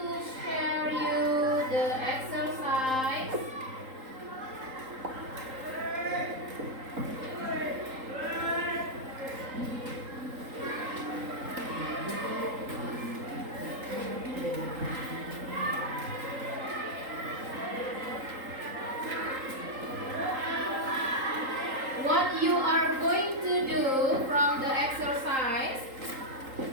share you the exercise. What you are going to do from the exercise,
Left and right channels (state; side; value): late; left; 3.8 ms